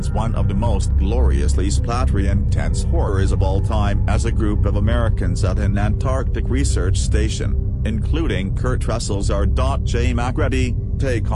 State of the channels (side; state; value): both; identical; correlation 1.00